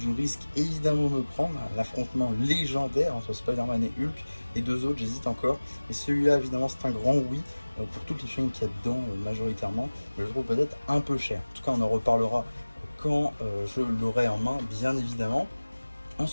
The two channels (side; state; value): both; inverted; correlation -1.00